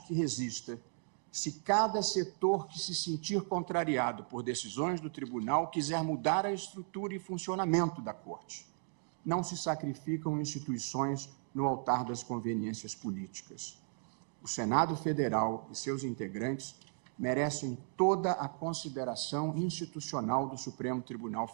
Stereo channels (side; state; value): left; silent; 54 dB below the other